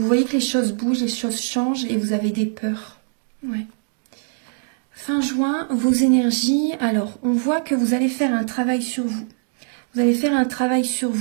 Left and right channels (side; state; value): left; silent; digital silence